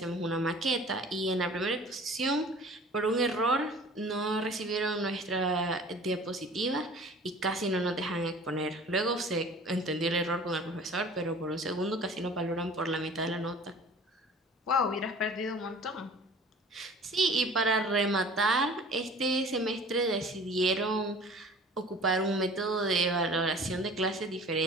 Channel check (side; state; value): both; normal; correlation 0.45